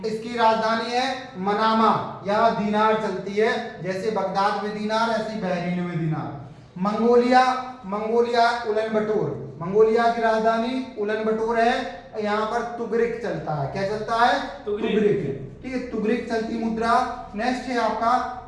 इसकी राजधानी है मनामा, यहाँ दीनार चलती है, जैसे बगदाद में दीनार ऐसे बहरीन में दीनार। मंगोलिया, मंगोलिया उलन बटोर, मंगोलिया की राजधानी उलन बटोर है। यहाँ पर तुगरिक चलता है, क्या चलता है? तुगरिक। ठीक है, तुगरिक चलती मुद्रा। नेक्स्ट है आपका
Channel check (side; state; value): both; identical; correlation 1.00